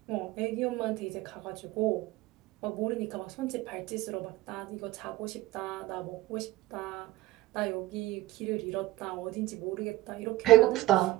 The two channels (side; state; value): left; quieter; 17.0 dB